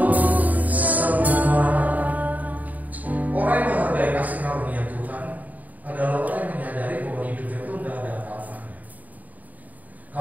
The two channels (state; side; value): late; left; 0.077 ms